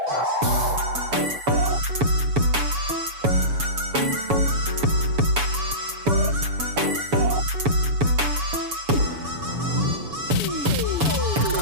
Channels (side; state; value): left; late; 7.1 ms